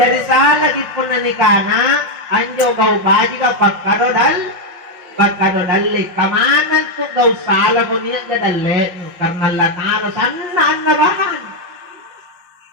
salah po na ni kana. Anjo gaw baji ka pagkadodali. Kamanan to gaw salah ko niya gadali. Karena latano. Sana nabahan.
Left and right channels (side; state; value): left; late; 5.6 ms